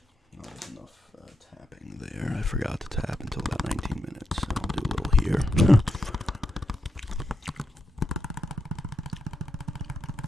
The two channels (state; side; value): normal; both; correlation 0.84